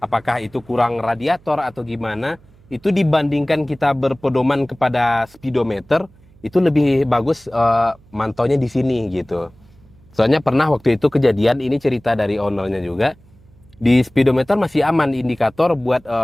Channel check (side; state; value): right; noise; hum, 28 dB below the sound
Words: itu kurang radiator atau gimana, itu dibandingkan kita berpedoman kepada speedometer, itu lebih bagus mantaunya di sini gitu. Soalnya pernah waktu itu kejadian, ini cerita dari ownernya juga, di speedometer masih aman, indikator buat